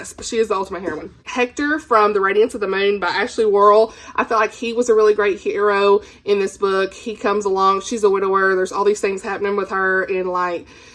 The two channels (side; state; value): both; identical; correlation 1.00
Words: she is the ultimate heroine. Hector from The Radiance of the Moon by Ashley Worrell. I feel like he was a really great hero in this book. He comes along. She's a widower. There's all these things happening with her, and like,